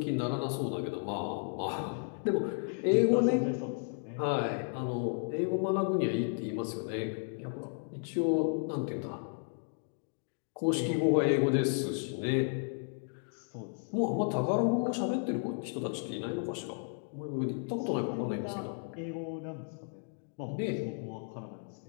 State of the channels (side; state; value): right; silent; 55 dB below the other